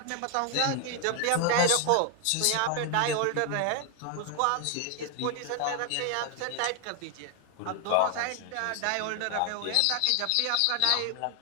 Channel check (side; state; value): both; different; correlation 0.00